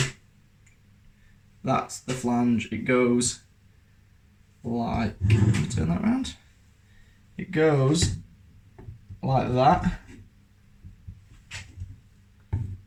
that's the flange. It goes like, turn that around. It goes like that.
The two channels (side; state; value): both; identical; correlation 1.00